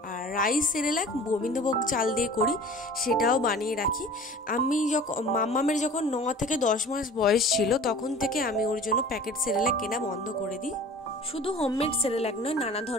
আর রাইস সেরেল্যাক গোবিন্দভোগ চাল দিয়ে করি, সেটাও বানিয়ে রাখি। আমি যখন মাম্মামের যখন 9 থেকে 10 মাস বয়স ছিল, তখন থেকে আমি ওর জন্য প্যাকেট সেরেল্যাক কেনা বন্ধ করে দিই। শুধু হোমমেড সেরেল্যাক নয়, নানা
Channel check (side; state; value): both; normal; correlation 0.43